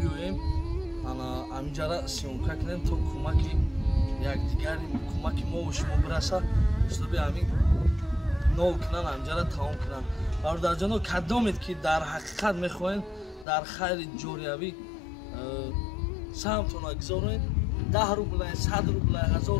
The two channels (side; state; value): right; drops out; at 13.5 s